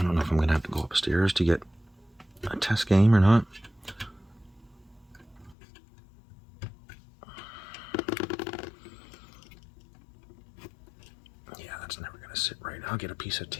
don't know if I'm going to have to go upstairs to get a test game or not. Yeah, that's never going to sit right. I'll get a piece of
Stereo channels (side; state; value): right; drops out; at 5.6 s